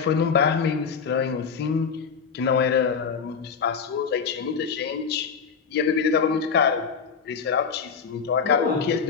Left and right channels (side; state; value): right; quieter; 6.1 dB